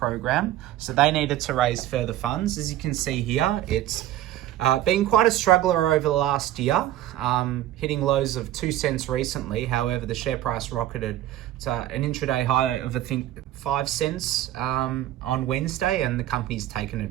So they needed to raise further funds. As you can see here, it's been quite a struggler over the last year, hitting lows of 2 cents recently. However, the share price rocketed to an intraday high of, I think, 5 cents on Wednesday, and the company's taken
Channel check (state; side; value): quieter; left; 13.6 dB